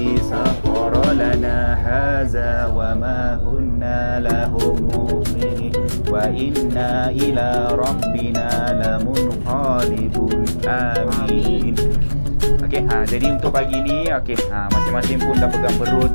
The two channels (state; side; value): inverted; both; correlation -1.00